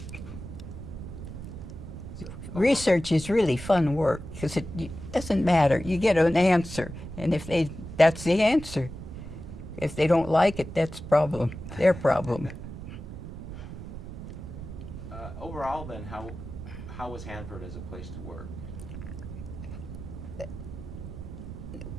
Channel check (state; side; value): noise; right; rumble, 10 dB below the sound